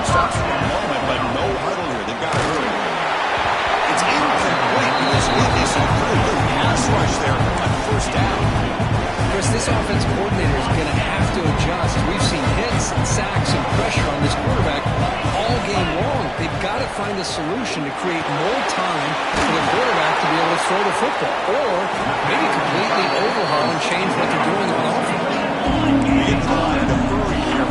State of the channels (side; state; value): both; identical; correlation 1.00